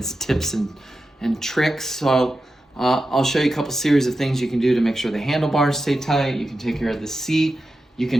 tips and tricks. So I'll show you a couple series of things you can do to make sure the handlebars stay tight. You can take care of the seat. You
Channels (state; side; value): normal; both; correlation 0.91